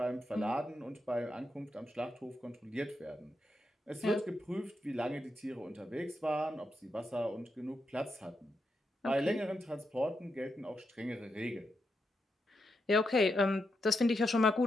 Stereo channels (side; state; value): both; normal; correlation 0.84